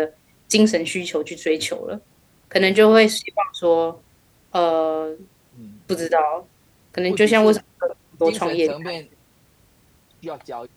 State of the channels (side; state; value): both; identical; correlation 1.00